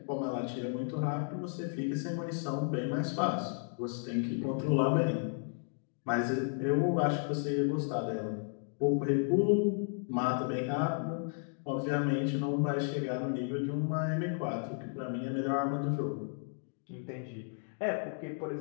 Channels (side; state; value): right; silent; 55 dB below the other